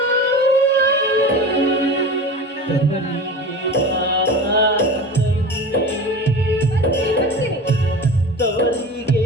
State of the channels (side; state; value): both; normal; correlation 0.32